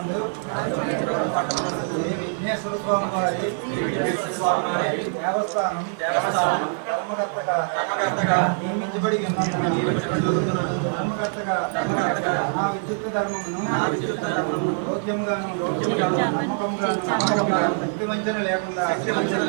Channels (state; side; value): silent; left; 58 dB below the other